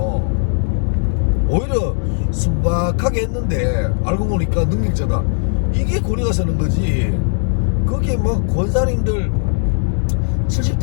오히려 순박하게 했는데 알고 보니까 능력자다. 이게 권위가 서는 거지. 거기에 뭐 권사님들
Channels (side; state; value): right; silent; 60 dB below the other